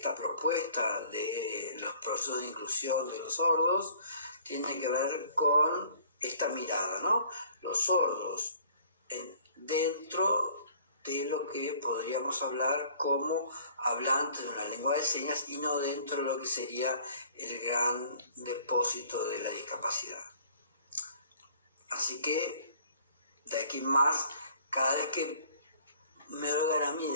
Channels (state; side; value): inverted; both; correlation -0.54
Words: propuesta de los procesos de inclusión de los sordos, tiene que ver con esta mirada, ¿no? Los sordos dentro de lo que podríamos hablar como hablantes de una lengua de señas y no dentro de lo que sería el gran depósito de la discapacidad. Así que, de aquí en más, cada vez que me oigan a mí